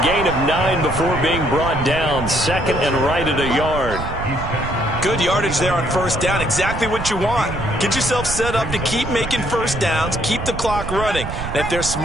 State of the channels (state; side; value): noise; right; rumble, 7 dB below the sound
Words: gain of 9 before being brought down. 2nd and right at a yard. Good yardage there on first down. Exactly what you want. Get yourself set up to keep making first downs, keep the clock running. And if they're